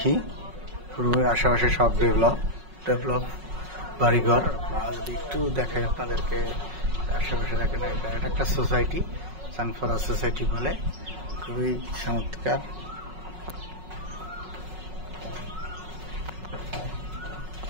আশেপাশে সব ডেভেলপ বাড়িঘর। যদি একটু দেখাই আপনাদেরকে, আশেপাশে দেখেন, এটা একটা সোসাইটি, চানপাড়া সোসাইটি বলে, খুবই চমৎকার।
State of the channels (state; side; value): late; left; 5.4 ms